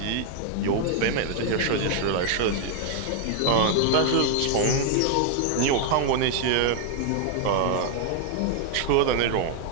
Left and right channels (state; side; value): different; both; correlation 0.00